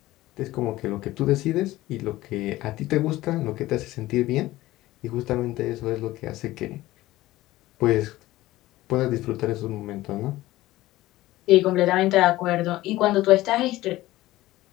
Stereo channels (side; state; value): right; quieter; 16.9 dB